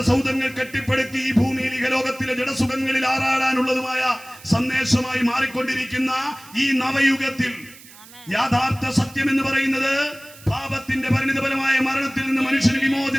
സൗധങ്ങൾ കെട്ടിപ്പടുത്തി ഈ ഭൂമിയിൽ ഇഹലോകത്തിലെ ജഡസുഖങ്ങളിൽ ആറാടാനുള്ളതുമായ സന്ദേശമായി മാറിക്കൊണ്ടിരിക്കുന്ന ഈ നവയുഗത്തിൽ യാഥാർത്ഥ സത്യം എന്ന് പറയുന്നത് പാപത്തിന്റെ പരിണിതഫലമായ മരണത്തിൽ നിന്ന് മനുഷ്യന്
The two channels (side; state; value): right; noise; hiss, 21 dB below the sound